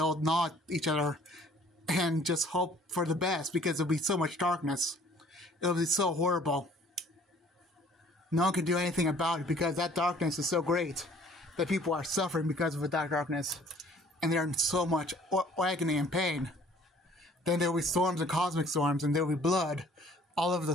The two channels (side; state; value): both; normal; correlation 0.55